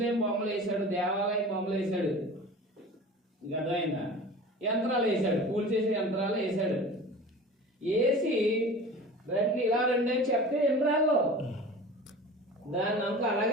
బొమ్మలు వేసాడు, దేవాలయం బొమ్మలు వేసాడు. మీకు అర్థమైందా? యంత్రాలు వేసాడు, పూలు చేసే యంత్రాలు వేసాడు. వేసి రండి ఇలా రండి అని చెప్తే యంత్రాల్లో దాన్ని అంతా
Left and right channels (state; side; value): normal; both; correlation 0.38